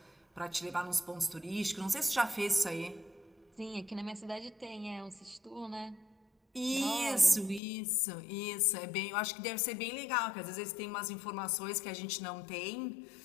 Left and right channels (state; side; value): drops out; right; at 7.6 s